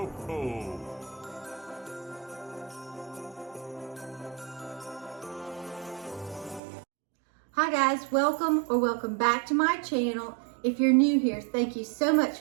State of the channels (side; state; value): left; drops out; at 6.6 s